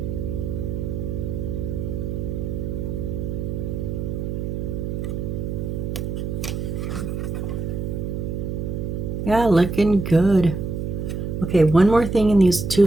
Yeah, looking good. Okay, one more thing in these two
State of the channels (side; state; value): right; noise; hum, 3 dB below the sound